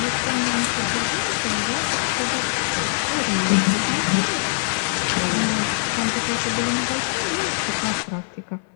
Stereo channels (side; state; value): right; silent; 64 dB below the other